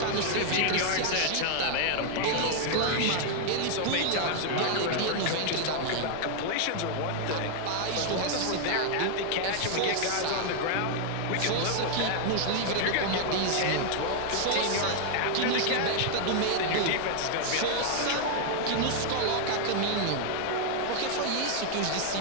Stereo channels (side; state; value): both; different; correlation 0.00